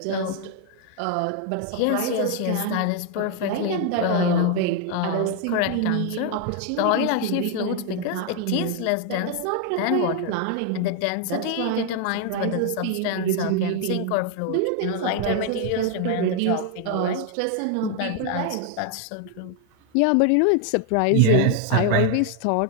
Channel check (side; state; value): both; different; correlation 0.00